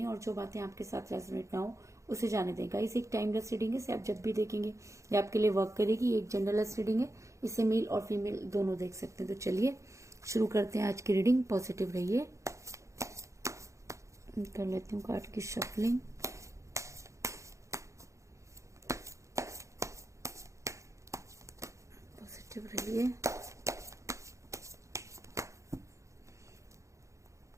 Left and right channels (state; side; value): late; left; 0.15 ms